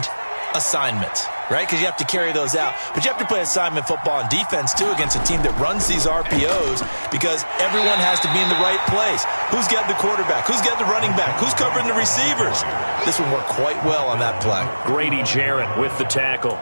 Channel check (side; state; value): both; inverted; correlation -1.00